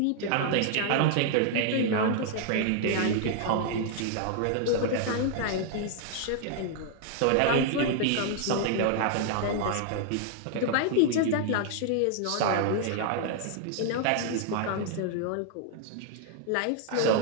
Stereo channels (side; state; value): both; different; correlation 0.00